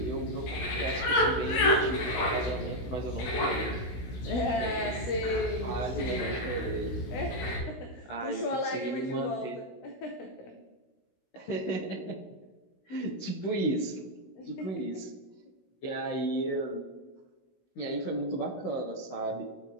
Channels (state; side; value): late; right; 16 ms